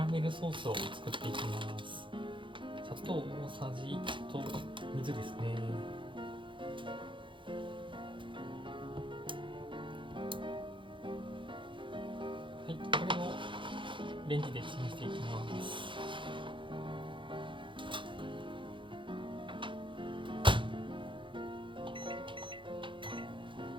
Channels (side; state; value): left; late; 0.24 ms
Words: メルソースを作っていきます。砂糖大さじ1と水ですね。はい、これをレンジでチンしていきます。